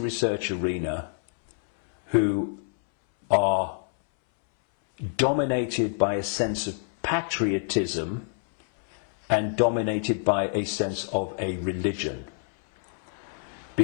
arena who are dominated by a sense of patriotism and dominated by a sense of a religion.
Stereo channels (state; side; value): silent; right; 60 dB below the other